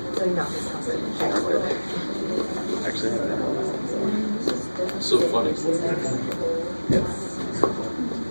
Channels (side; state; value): both; inverted; correlation -1.00